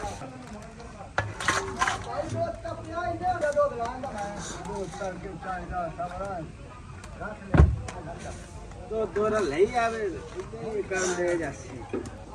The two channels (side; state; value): both; identical; correlation 1.00